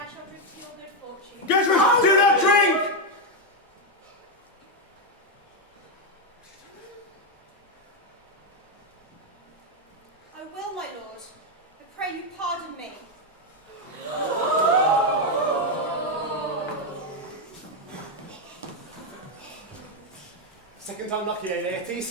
shall drink to your good fortune. Gertrude, do not drink! I will, my lord. I pray you pardon me. Second time lucky, eh, Laertes?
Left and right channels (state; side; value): normal; both; correlation 0.03